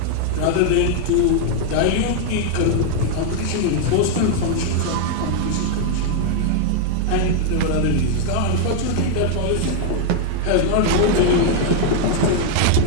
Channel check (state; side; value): different; both; correlation 0.00